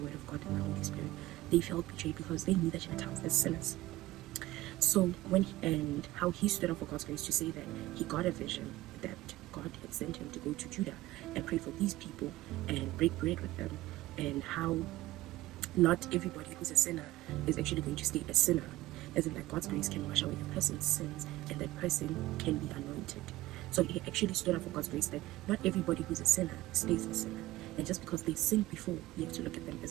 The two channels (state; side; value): quieter; left; 17.1 dB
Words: of God and the Holy Spirit, they felt betrayed because they knew the Gentiles as sinners. So and how he stood up for God's grace to say that he got a vision that God had sent him to go to Judah and pray for these people and break bread with them, and how not everybody who's a sinner is actually going to stay a sinner, as in that God's grace can wash away a person's sins and that person can be anointed. So he actually stood up for God's grace that not everybody who's a sinner stays a sinner. And just because they sinned before, you have to look at them